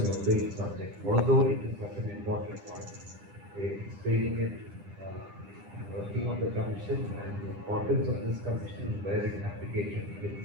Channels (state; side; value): late; left; 10 ms